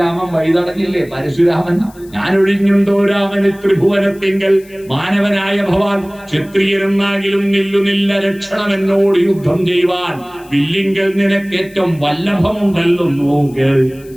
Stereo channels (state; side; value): noise; left; hiss, 26 dB below the sound